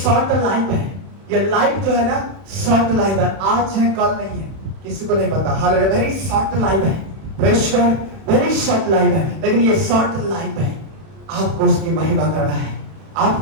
लाइफ है। ये लाइफ जो है ना शॉर्ट लाइफ है, आज है कल नहीं है, किसी को नहीं पता। हालेलुया, वेरी शॉर्ट लाइफ है, praise God, very short life है। लेकिन ये शॉर्ट लाइफ है, आपको उसकी महिमा करना है,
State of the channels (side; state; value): left; late; 31 ms